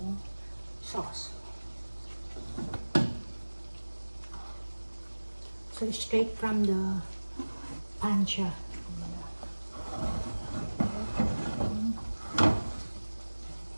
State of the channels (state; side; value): inverted; both; correlation -1.00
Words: sauce. So, straight from the pan siya.